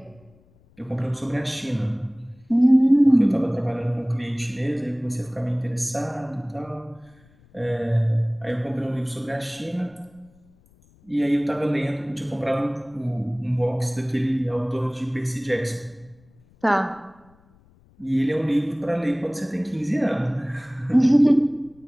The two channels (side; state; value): left; noise; rumble, 30 dB below the sound